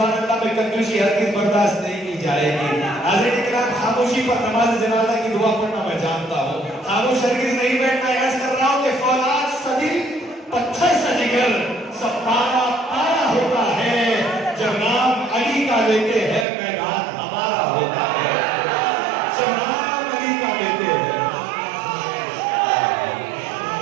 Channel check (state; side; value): drops out; left; at 16.4 s